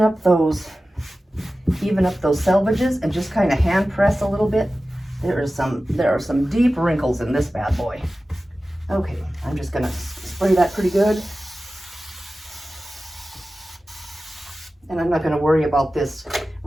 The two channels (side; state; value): both; normal; correlation 0.95